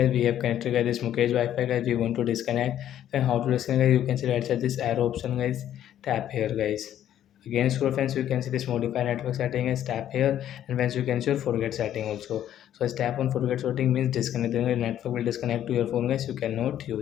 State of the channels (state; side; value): quieter; right; 11.2 dB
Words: we have connected guys this Mukesh Wi-Fi guys. We want to disconnect. Then how to disconnect guys? You can see right side this arrow option guys. Tap here guys. Again scroll friends, you can see this modify network setting is tap here, and once you can see your forget setting also. So as tap on forget setting means disconnect. Then the network will disconnect to your phone guys. You cannot